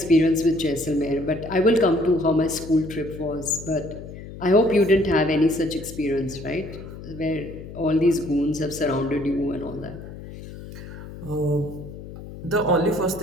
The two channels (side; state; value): left; noise; hum, 13 dB below the sound